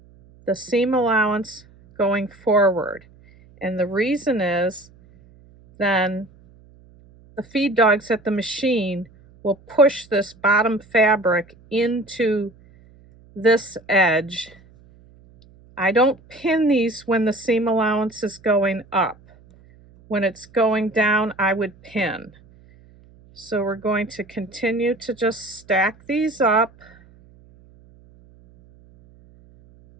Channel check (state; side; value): noise; right; hum, 27 dB below the sound